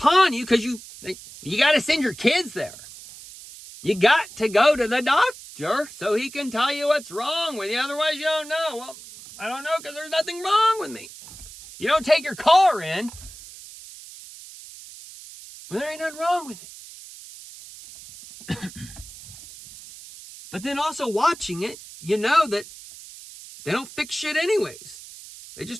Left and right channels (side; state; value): right; noise; hiss, 16 dB below the sound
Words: you because you got to send your kids there. You got to go to the doctor so he can tell you what's wrong with you. Otherwise, you don't know. Well, I don't know because there's nothing wrong with me. You don't take your car in. Well, there ain't nothing wrong with it. But then also watching it, you know that they don't fix shit anyways. They